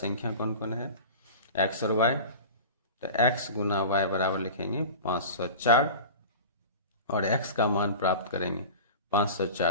कौन कौन है, x और y। तो x गुना y बराबर लिखेंगे 504 और x का मान प्राप्त करेंगे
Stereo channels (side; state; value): both; inverted; correlation -0.34